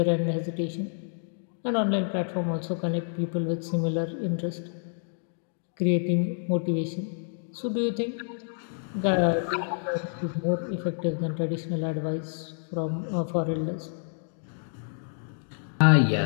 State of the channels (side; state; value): right; silent; digital silence